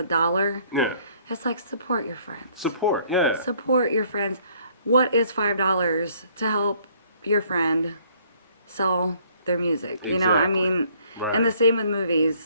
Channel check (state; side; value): inverted; both; correlation -0.62